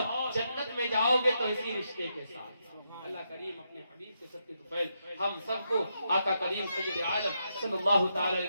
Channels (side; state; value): both; inverted; correlation -0.82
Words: جنت میں جاؤ گے تو اسی رشتے کے ساتھ۔ اللہ کریم اپنے حبیب کے صدقے طفیل ہم سب کو آقا کریم سید عالم صلی اللہ تعالی